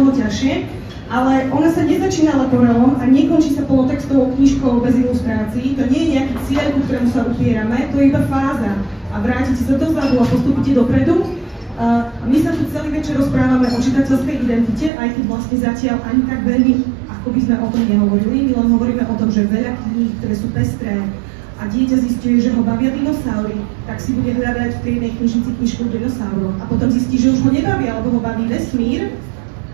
ťažšie. Ale ona sa nezačína leporelom a nekončí sa polotextovou knižkou bez ilustrácií. To nie je nejaký cieľ, ku ktorému sa upierame, to je iba fáza. A vrátite sa dozadu a postupíte dopredu. My sa tu celý večer rozprávame o čitateľskej identite, aj keď vlastne zatiaľ ani tak veľmi, ako by sme o tom nehovorili. My len hovoríme o tom, že veľa kníh, ktoré sú pestré a dieťa zistuje, že ho bavia dinosaury, tak si bude hľadať v tej jednej knižnici knižku o dinosauroch. A potom zistí, že už ho nebavia, alebo ho baví vesmír.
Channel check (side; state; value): left; drops out; at 14.9 s